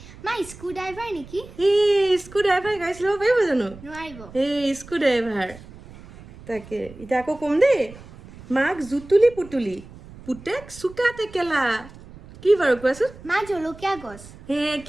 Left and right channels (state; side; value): noise; right; rumble, 19 dB below the sound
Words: মা স্ক্ৰু ড্ৰাইভাৰ নেকি? স্ক্ৰু ড্ৰাইভাৰে গাড়ী চলাব পাৰিব জানো? নোৱাৰিব। Screw driver. তাকে এতিয়া আকৌ ক'ম দেই। মাক জুতুলি পুতুলি, পুতেক চোকা টেকেলা, কি বাৰু কোৱাচোন? মা জলকীয়া গছ।